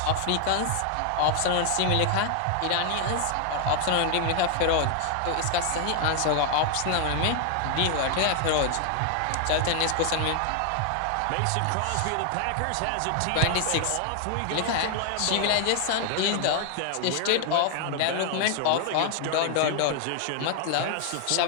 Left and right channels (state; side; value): different; both; correlation 0.00